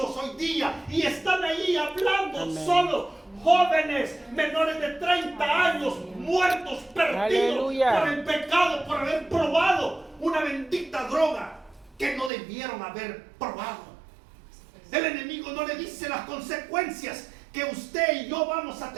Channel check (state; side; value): drops out; left; at 12.3 s